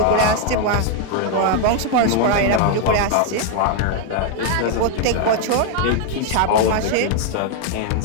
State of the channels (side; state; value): both; different; correlation 0.00